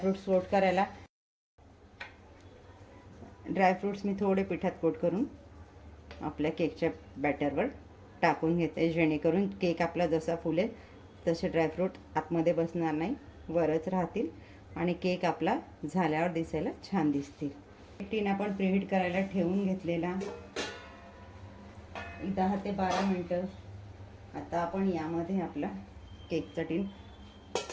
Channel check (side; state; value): both; identical; correlation 1.00